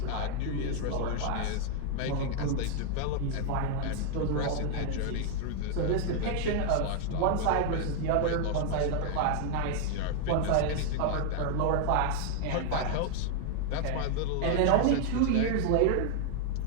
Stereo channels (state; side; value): different; both; correlation 0.00